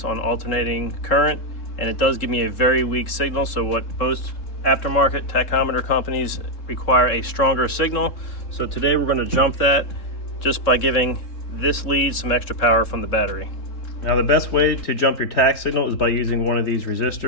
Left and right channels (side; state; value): right; late; 3.7 ms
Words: on alternating current, and it does give me a very weak signal. So what most aftermarket tachometer companies require a stronger signal. So today we're going to jump that just by giving this lead some extra power from the battery. Now the best way to jump your tach signal is by using one of these